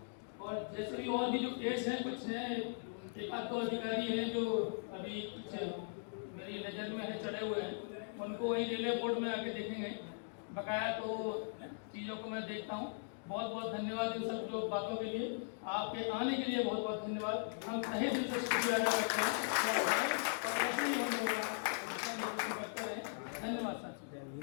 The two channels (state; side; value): silent; right; digital silence